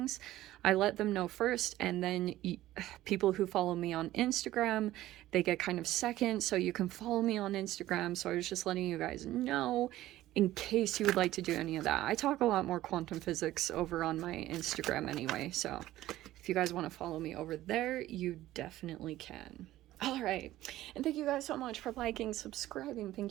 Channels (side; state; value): left; quieter; 15.1 dB